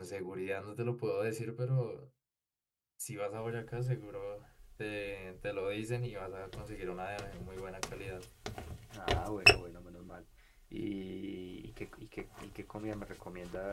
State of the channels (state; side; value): identical; both; correlation 1.00